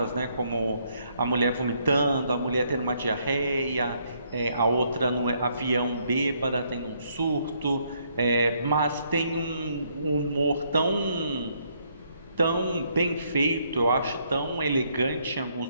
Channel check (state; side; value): inverted; both; correlation -0.71